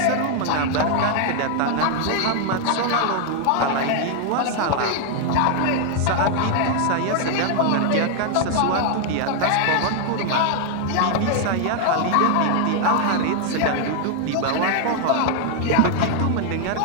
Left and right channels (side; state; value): both; different; correlation 0.00